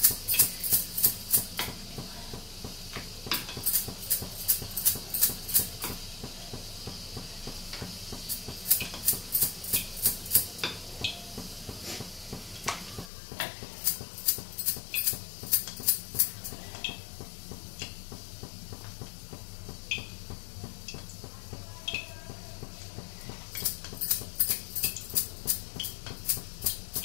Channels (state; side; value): drops out; right; at 13.1 s